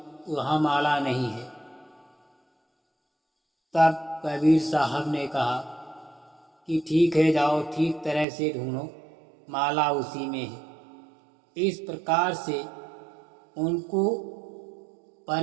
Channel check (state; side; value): drops out; left; at 8.2 s